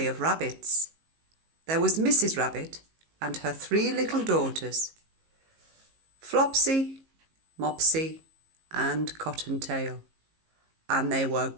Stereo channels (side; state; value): left; late; 19 ms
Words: of rabbits. There was Mrs. Rabbit and her 3 little daughters, Flopsy, Mopsy and Cottontail, and they were